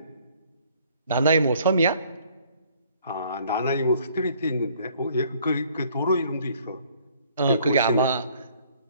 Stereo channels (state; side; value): inverted; both; correlation -0.60